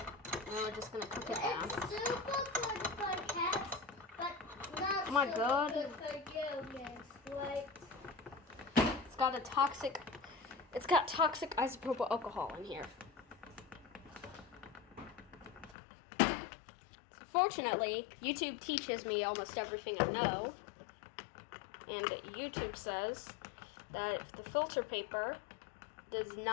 we're just gonna cook it down. It's super good for cats, but not Oh my super God. good for humans, right? It's got toxic isopropyl alcohol in here. Fortunately, YouTube teaches me almost everything I know. And YouTube says that if the filter paper does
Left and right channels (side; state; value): right; drops out; at 15.8 s